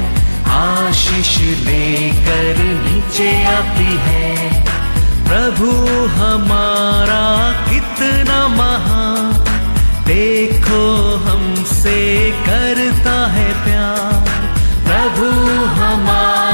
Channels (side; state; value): both; inverted; correlation -1.00